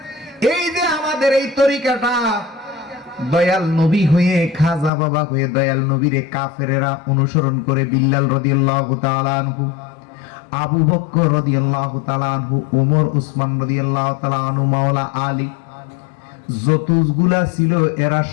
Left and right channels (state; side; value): drops out; right; at 4.9 s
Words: এই যে আমাদের এই তরিকাটা, দয়াল নবী হয়ে, খাজা বাবা হয়ে দয়াল নবীরে কাফেরেরা অনুসরণ করে, বিল্লাল রাদিয়াল্লাহু তাআলা আনহু, আবু বকর রাদিয়াল্লাহু তাআলা আনহু, ওমর ওসমান রাদিয়াল্লাহু তাআলা আনহু, মাওলা আলী, যতগুলা ছিল এরা